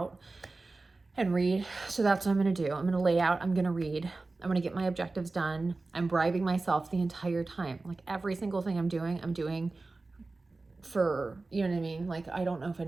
and read. So that's what I'm gonna do. I'm gonna lay out, I'm gonna read, I'm gonna get my objectives done. I'm bribing myself the entire time. Like, every single thing I'm doing for, you know what I mean? Like, I don't know if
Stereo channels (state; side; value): quieter; left; 3.4 dB